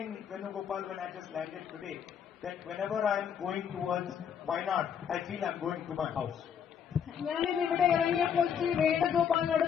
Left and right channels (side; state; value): right; quieter; 7.9 dB